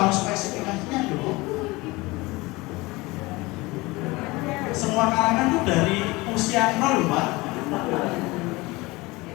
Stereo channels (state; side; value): quieter; right; 22.4 dB